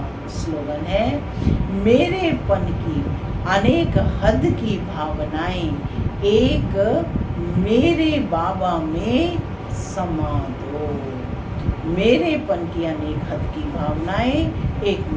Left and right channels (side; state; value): both; identical; correlation 1.00